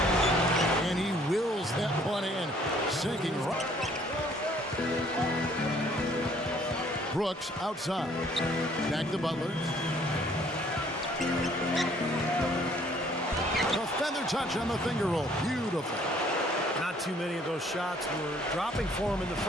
And he wills that one in. Sinking right. Brooks outside. Back to Butler. The feather touch on the finger roll. Beautiful. Not too many of those shots were dropping for him in the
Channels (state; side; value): normal; both; correlation 0.60